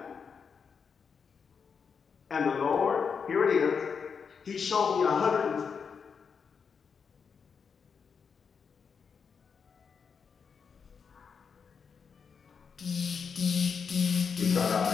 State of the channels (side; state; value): right; quieter; 6.1 dB